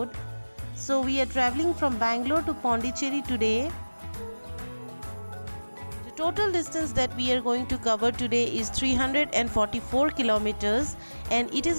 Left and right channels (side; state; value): both; inverted; correlation -1.00